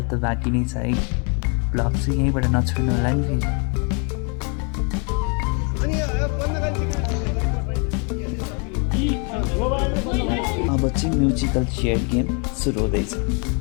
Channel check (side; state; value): right; quieter; 36.1 dB